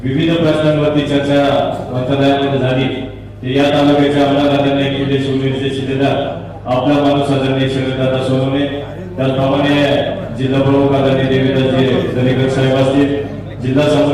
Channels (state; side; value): identical; both; correlation 1.00